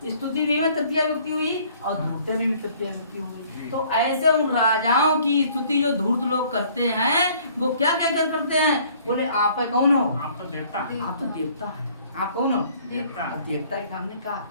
स्तुति में तृतीया विभक्ति हुई और धूर्त में भी तृतीया विभक्ति हुई। तो ऐसे उन राजाओं की स्तुति जो धूर्त लोग करते हैं वो क्या कहकर करते हैं? बोले आप कौन हो? आप तो देवता। आप तो देवता है। आप कौन हो? देवता। देवता के सामने का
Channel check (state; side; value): inverted; both; correlation -0.57